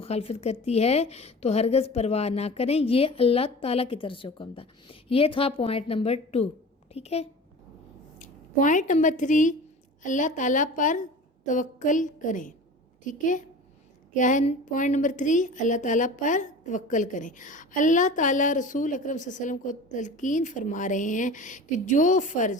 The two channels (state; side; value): normal; both; correlation 0.37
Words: کرتی ہے تو ہرگز پرواہ نہ کریں۔ یہ اللہ تعالیٰ کی طرف سے حکم تھا۔ یہ تھا پوائنٹ نمبر 2، ٹھیک ہے۔ پوائنٹ نمبر 3، اللہ تعالیٰ پر توکل کریں، ٹھیک ہے۔ کیا ہے پوائنٹ نمبر 3؟ اللہ تعالیٰ پر توکل کریں۔ اللہ تعالیٰ رسول اکرم صلی اللہ علیہ وسلم کو تلقین فرما رہے ہیں کہ جو